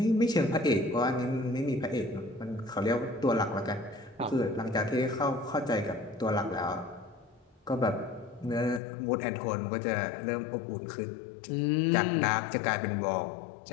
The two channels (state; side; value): drops out; right; at 8.8 s